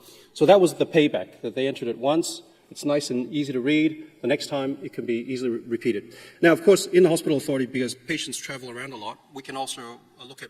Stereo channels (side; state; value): both; identical; correlation 1.00